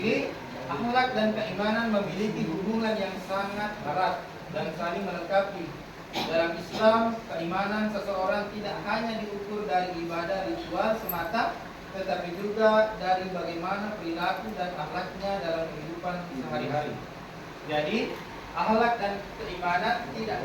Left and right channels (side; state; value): both; identical; correlation 1.00